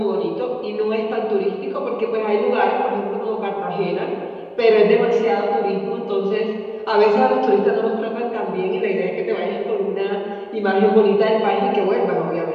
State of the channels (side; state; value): both; identical; correlation 1.00